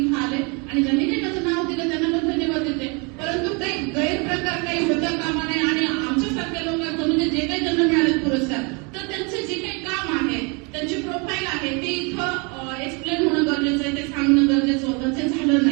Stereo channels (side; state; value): left; quieter; 31.9 dB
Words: आले आणि ज्यांनी काही माझं नाव दिलं त्यांना पण धन्यवाद देते. परंतु काही गैरप्रकार काही होता कामा नये आणि आमच्यासारख्या लोकांचं म्हणजे जे काही ज्यांना मिळाले पुरस्कार तर त्यांचे जे काही काम आहे त्यांची प्रोफाईल आहे ते इथं एक्सप्लेन होणं गरजेचं आहे, ते सांगणं गरजेचं होतं. ते झालं